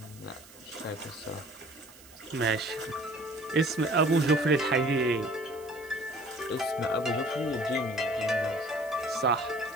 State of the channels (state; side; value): noise; right; hiss, 22 dB below the sound